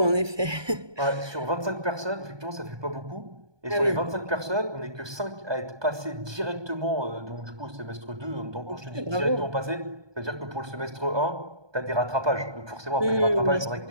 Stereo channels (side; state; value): left; late; 1.2 ms